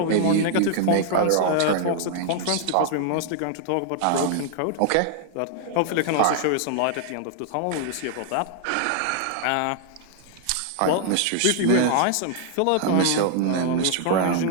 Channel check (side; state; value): both; different; correlation -0.01